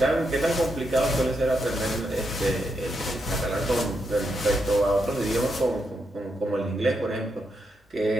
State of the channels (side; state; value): both; normal; correlation 0.82